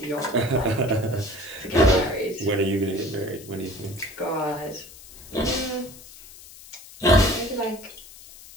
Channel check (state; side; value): noise; left; hiss, 18 dB below the sound